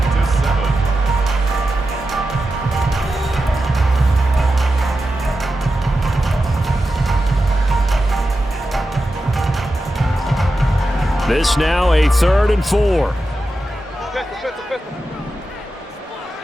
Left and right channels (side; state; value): both; normal; correlation 0.91